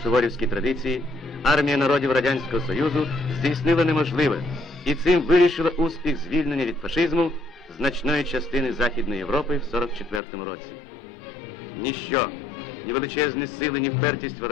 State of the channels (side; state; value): right; drops out; at 10.2 s